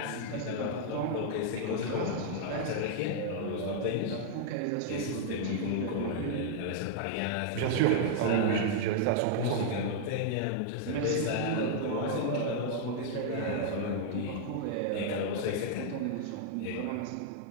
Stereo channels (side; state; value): both; different; correlation -0.01